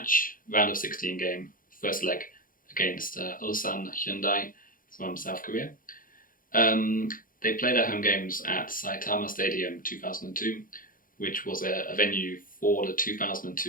round of 16 game, first leg against Ulsan Hyundai from South Korea. They play their home games at Saitama Stadium 2002, which was a venue for the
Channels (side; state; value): right; late; 0.40 ms